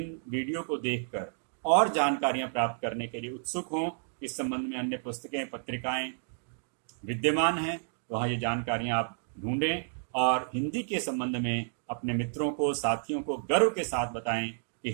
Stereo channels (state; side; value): silent; left; digital silence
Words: वीडियो को देखकर और जानकारियां प्राप्त करने के लिए उत्सुक हों। इस संबंध में अन्य पुस्तकें, पत्रिकाएं विद्यमान हैं, वहाँ ये जानकारियां आप ढूंढें और हिंदी के संबंध में अपने मित्रों को, साथियों को गर्व के साथ बताएं कि